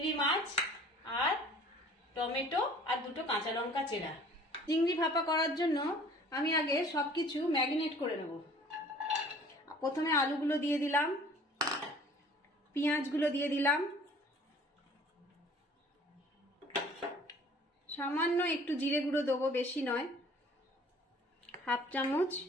মাছ আর টমেটো আর দুটো কাঁচা লঙ্কা চেরা। চিংড়ি ভাপা করার জন্য আমি আগে সব কিছু ম্যারিনেট করে নেব। প্রথমে আলুগুলো দিয়ে দিলাম, পেঁয়াজগুলো দিয়ে দিলাম, সামান্য একটু জিরে গুঁড়ো দেবো, বেশি নয়, হাফ চামচ,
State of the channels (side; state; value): both; normal; correlation 0.51